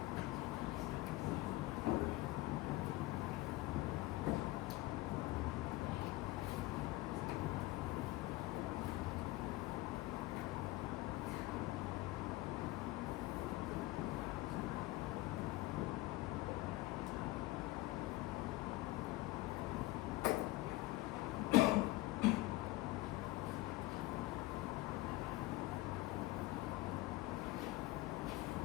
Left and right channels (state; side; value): quieter; right; 18.9 dB